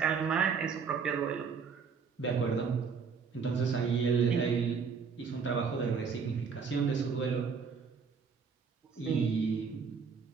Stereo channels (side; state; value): left; quieter; 5.8 dB